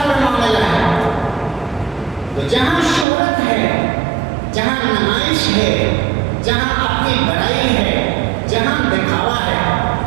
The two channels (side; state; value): left; drops out; at 3.1 s